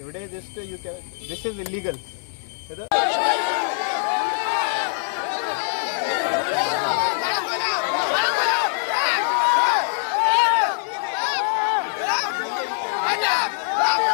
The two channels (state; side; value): silent; right; 63 dB below the other